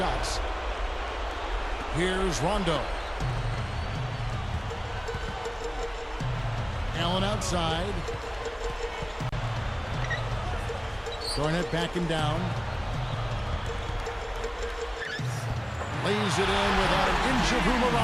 Here's Rondo. Allen outside. Garnett backing down. Lays it in without an inch of room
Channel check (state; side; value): identical; both; correlation 1.00